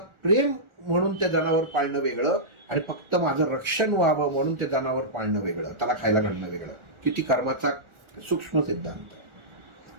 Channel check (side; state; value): left; late; 1.4 ms